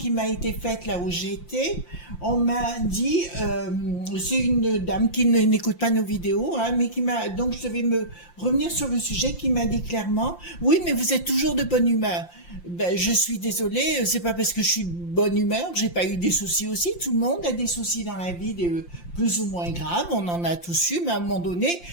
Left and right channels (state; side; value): late; right; 5.7 ms